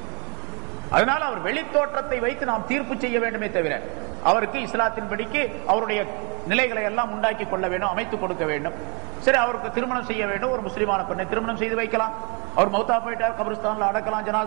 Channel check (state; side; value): quieter; left; 32.3 dB